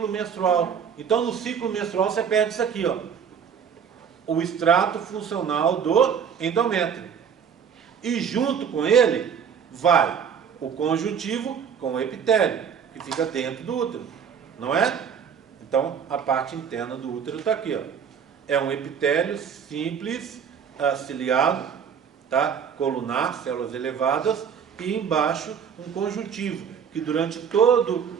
menstrual. Então, no ciclo menstrual, você perde isso aqui, ó. O extrato funcional do endométrio. E junto com ele, vai o conjuntivo com o epitélio, que fica dentro do útero, não é? Então, a parte interna do útero está aqui, ó. É um epitélio simples, ciliado, tá? Colunar, células elevadas, e embaixo um conjuntivo, que durante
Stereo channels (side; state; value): left; quieter; 7.3 dB